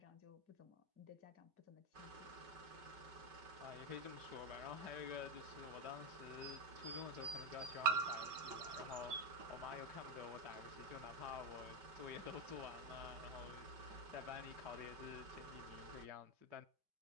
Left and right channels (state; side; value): late; left; 5.4 ms